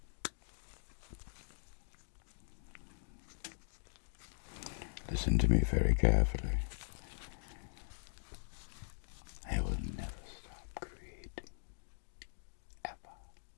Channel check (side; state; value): right; silent; digital silence